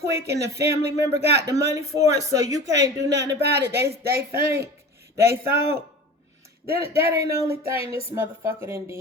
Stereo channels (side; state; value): both; normal; correlation 0.36